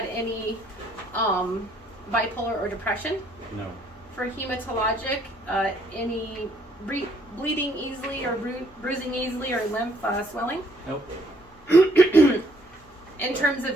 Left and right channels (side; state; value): left; noise; hum, 27 dB below the sound